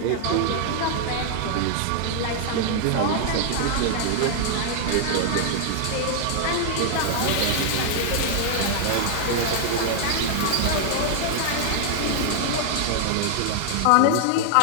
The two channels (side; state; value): both; different; correlation 0.00